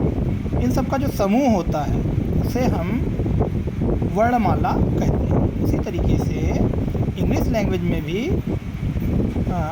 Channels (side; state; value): both; identical; correlation 1.00